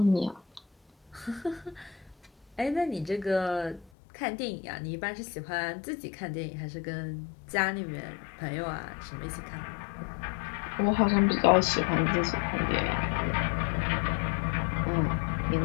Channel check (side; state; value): right; drops out; at 3.9 s